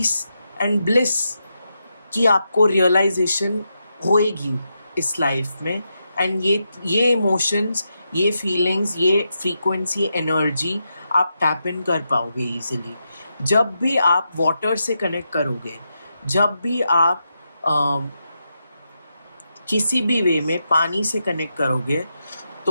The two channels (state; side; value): inverted; both; correlation -0.85